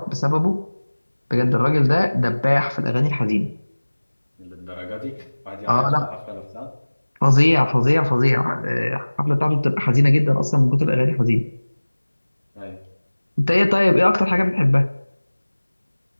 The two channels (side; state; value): both; inverted; correlation -1.00